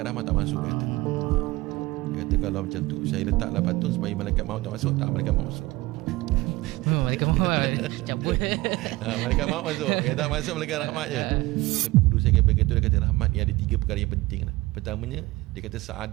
rahmat tak masuk, dia kata. Dia kata kalau macam tu saya letaklah patung supaya malaikat maut tak masuk. Tak, malaikat maut masuk. Malaikat maut cabut. Malaikat maut masuk. Yang tak masuk malaikat rahmat je. Guru saya kata, dia kata rahmat ni ada 3 perkara yang penting lah. Pertamanya dia kata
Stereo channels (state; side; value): quieter; left; 20.3 dB